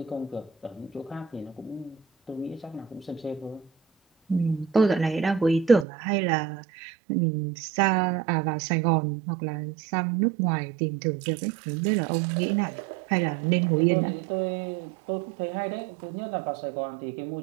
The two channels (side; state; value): left; drops out; at 5.9 s